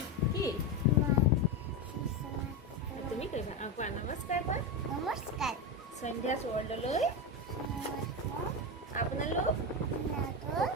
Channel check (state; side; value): normal; both; correlation 0.14